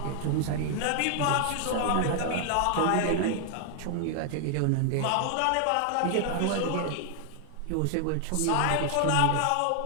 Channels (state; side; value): different; both; correlation 0.00